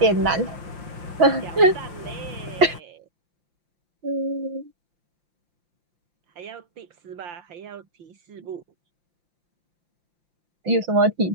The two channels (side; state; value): left; late; 5.8 ms